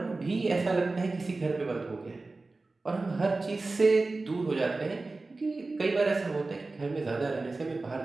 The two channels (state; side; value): quieter; left; 3.4 dB